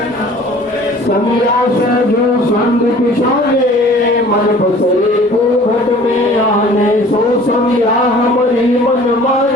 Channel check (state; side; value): normal; both; correlation 0.49